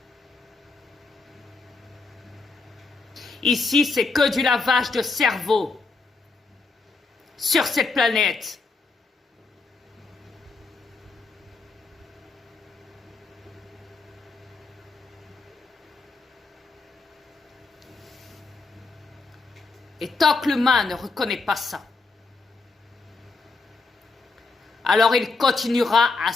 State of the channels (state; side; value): quieter; right; 4.0 dB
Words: Ici, c'est que du lavage de cerveau. Sur cette planète. Et tant que l'humain ne reconnaît pas ça, alors il continuera à